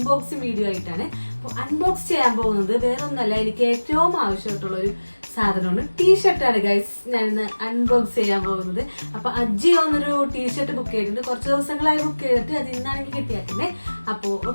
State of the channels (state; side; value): inverted; both; correlation -1.00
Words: വീഡിയോ ആയിട്ടാണ്. അപ്പോൾ അൺബോക്സ് ചെയ്യാൻ പോകുന്നത് വേറൊന്നല്ല, എനിക്ക് ഏറ്റവും ആവശ്യമായിട്ടുള്ള ഒരു സാധനമാണ് ടീഷർട്ടാണ് ഗൈസ്. ഞാനിന്ന് അൺബോക്സ് ചെയ്യാൻ പോകുന്നത്. അപ്പോൾ അജിയോ എന്നൊരു ടീഷർട്ട് ബുക്ക് ചെയ്തിട്ടുണ്ട്. കുറച്ച് ദിവസങ്ങളായി ബുക്ക് ചെയ്തിട്ട് അത് ഇന്നാണെങ്കിൽ കിട്ടിയാക്കുന്നത്. അപ്പോൾ